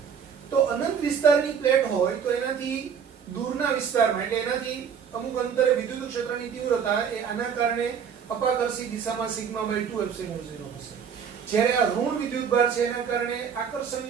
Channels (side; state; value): left; quieter; 7.2 dB